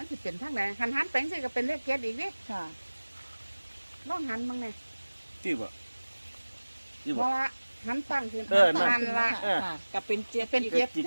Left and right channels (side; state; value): both; inverted; correlation -1.00